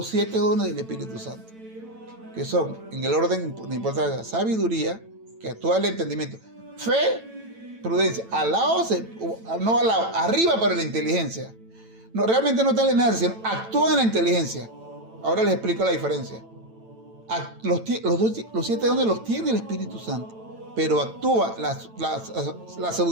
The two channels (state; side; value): late; left; 9.0 ms